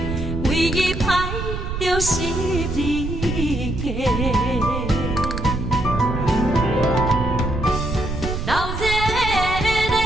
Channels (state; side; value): noise; right; rumble, 4 dB below the sound